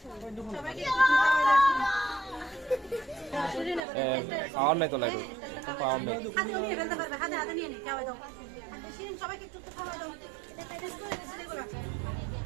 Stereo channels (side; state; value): left; drops out; at 3.8 s